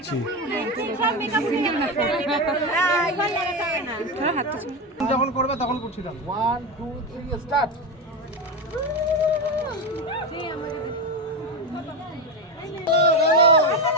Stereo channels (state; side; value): normal; both; correlation 0.15